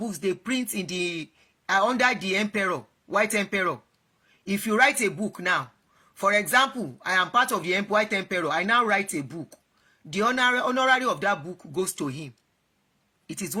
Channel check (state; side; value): identical; both; correlation 1.00